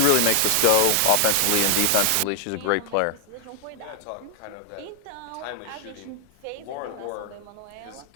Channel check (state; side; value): different; both; correlation 0.00